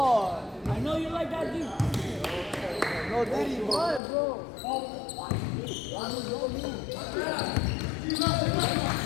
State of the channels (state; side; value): drops out; right; at 4.0 s